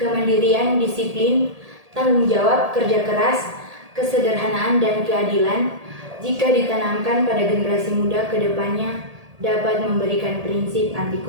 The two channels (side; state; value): left; late; 1.8 ms